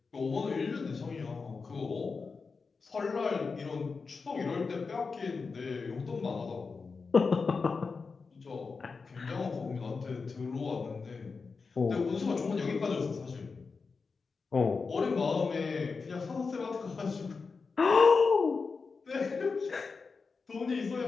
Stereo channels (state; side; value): quieter; right; 4.7 dB